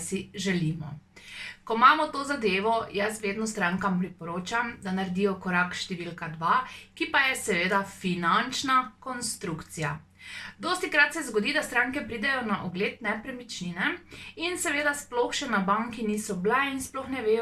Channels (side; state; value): both; identical; correlation 1.00